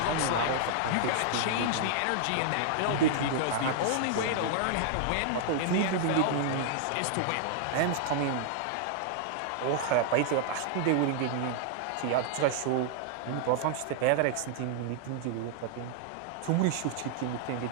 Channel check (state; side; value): different; both; correlation -0.01